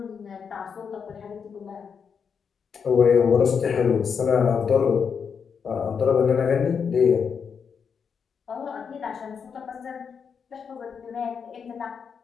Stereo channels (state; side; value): quieter; right; 6.5 dB